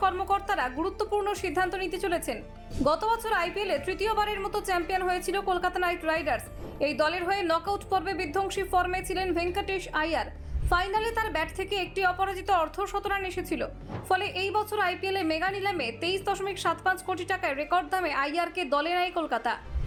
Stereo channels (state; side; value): identical; both; correlation 1.00